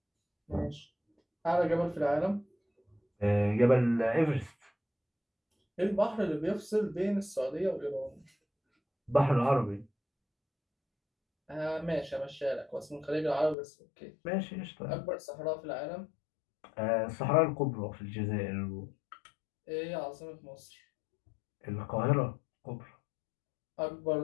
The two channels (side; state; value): right; drops out; at 13.6 s